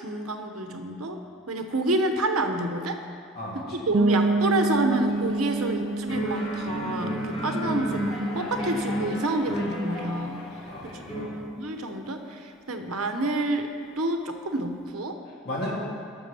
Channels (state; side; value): normal; both; correlation 0.44